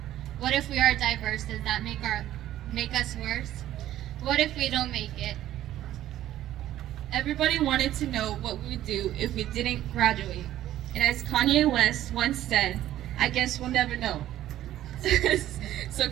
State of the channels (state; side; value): quieter; left; 13.1 dB